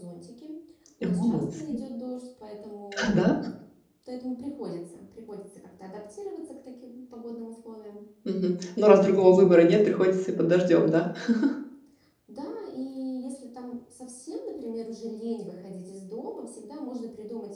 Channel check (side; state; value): both; identical; correlation 1.00